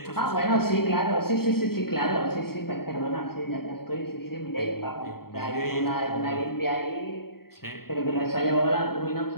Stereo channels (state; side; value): late; right; 0.94 ms